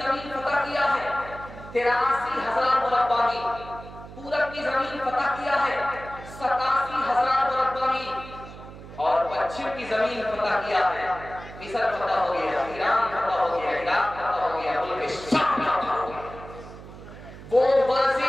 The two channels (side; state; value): right; noise; hum, 15 dB below the sound